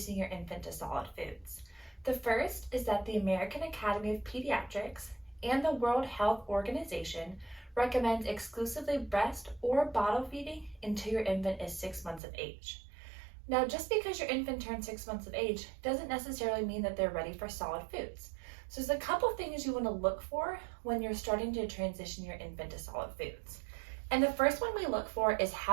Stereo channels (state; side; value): drops out; left; at 12.2 s